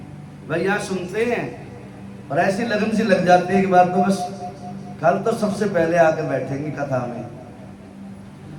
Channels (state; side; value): identical; both; correlation 1.00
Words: भाई, यहाँ सुनते हैं और ऐसी लगन सी लग जाती है कि बात तो बस कल तो सबसे पहले आके बैठेंगे कथा में,